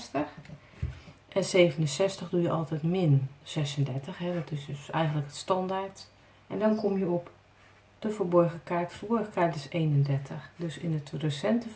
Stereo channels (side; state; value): both; identical; correlation 1.00